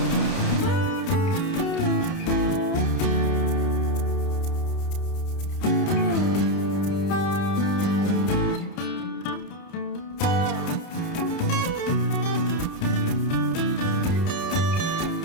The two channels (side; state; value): right; late; 30 ms